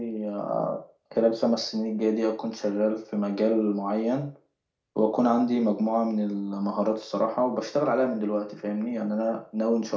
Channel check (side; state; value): both; identical; correlation 1.00